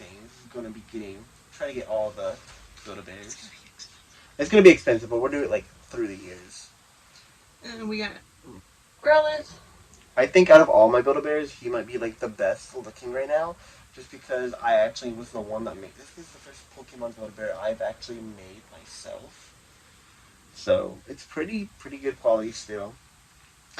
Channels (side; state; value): both; identical; correlation 1.00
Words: Is going to be trying to get all the Build-A-Bears. It's going to be expensive, but we'll do it, like, through the years. And we got Growlithe. I think out of all my Build-A-Bears, he might be like the best looking right now, just because I actually was the one that made this. Is the first Pokemon Build-A-Bear I've actually made myself, so it's pretty good quality still.